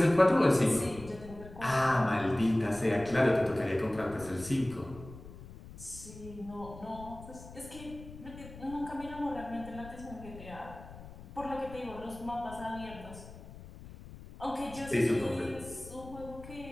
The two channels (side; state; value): left; noise; rumble, 15 dB below the sound